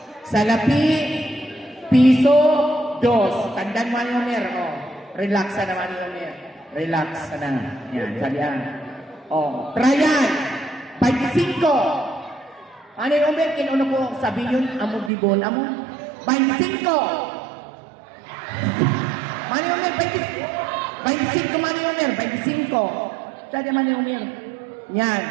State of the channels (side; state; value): left; drops out; at 15.1 s